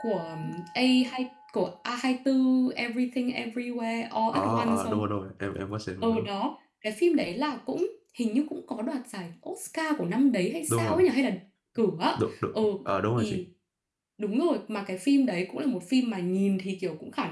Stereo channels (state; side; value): identical; both; correlation 1.00